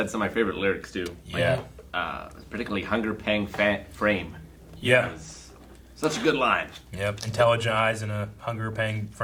some of my favorite lyrics too. Yeah, particularly "Hunger Pang Frame." Yeah. Such a good line. Yep, intelligent eyes in a hunger-paying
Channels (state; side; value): identical; both; correlation 1.00